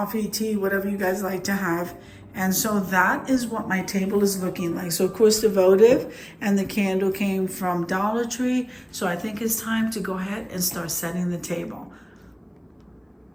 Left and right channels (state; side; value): identical; both; correlation 1.00